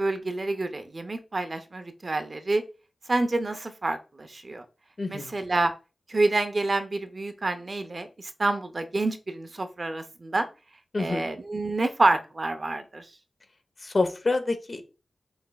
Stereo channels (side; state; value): both; normal; correlation 0.96